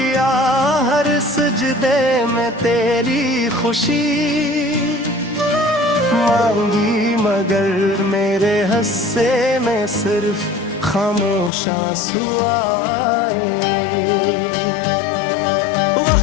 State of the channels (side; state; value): right; drops out; at 11.5 s